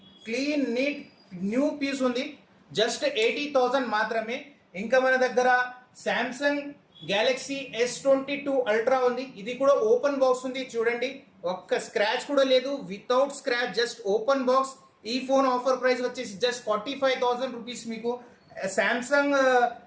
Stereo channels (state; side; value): identical; both; correlation 1.00